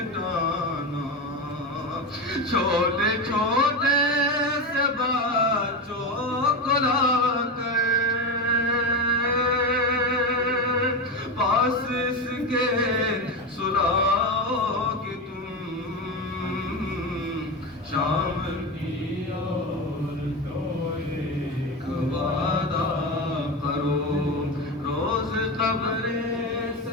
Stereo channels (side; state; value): both; normal; correlation 0.18